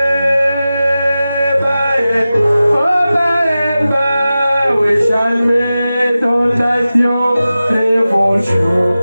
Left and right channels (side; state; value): both; inverted; correlation -0.94